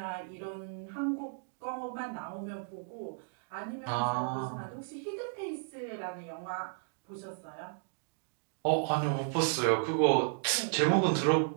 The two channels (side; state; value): left; silent; digital silence